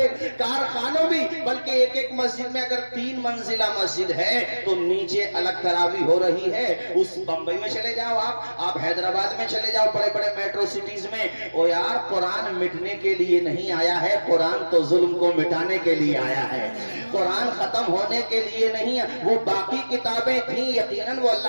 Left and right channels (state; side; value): inverted; both; correlation -1.00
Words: کارخانوں بھی. بلکہ ایک مسجد میں اگر 3 منزلہ مسجد ہے تو نیچے الگ تراویح ہو رہی ہے. اس بمبئی میں چلے جاؤ، آپ حیدرآباد میں چلے جاؤ، بڑے بڑے میٹرو سٹیز میں. او یار قرآن مٹنے کے لیے نہیں آیا ہے، قرآن تو ظلم کو مٹانے کے لیے آیا ہے. قرآن ختم ہونے کے لیے نہیں. وہ باقی کتابیں تھیں یقیناً وہ